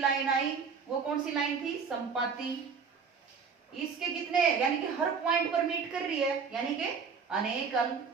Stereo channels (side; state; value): left; quieter; 5.7 dB